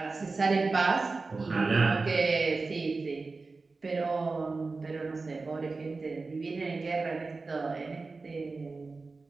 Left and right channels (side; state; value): left; quieter; 3.9 dB